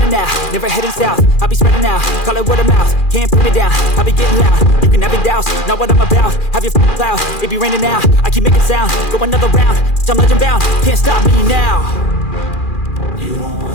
out, never heading south. I'll be spreading out, call it word of mouth. Can't put me down, I'll be getting loud. You can have it douse, not what I'm about. Have your cloud, it be raining now. I keep making sound, go another round. I'm legend bound, can't stop me now. You don't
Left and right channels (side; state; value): right; late; 2.4 ms